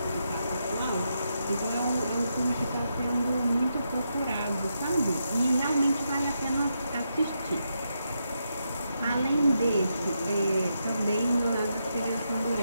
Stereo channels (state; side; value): inverted; both; correlation -0.83